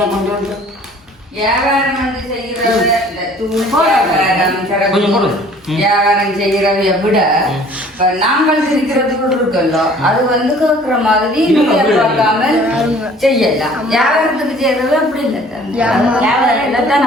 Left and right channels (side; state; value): both; normal; correlation 0.52